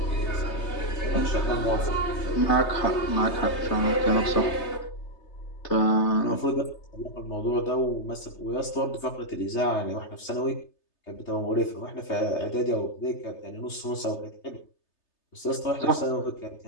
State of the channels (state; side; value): late; right; 3.3 ms